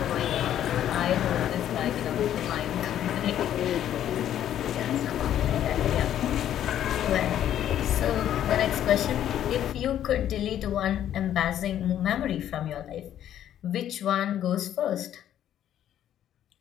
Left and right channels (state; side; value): quieter; right; 11.0 dB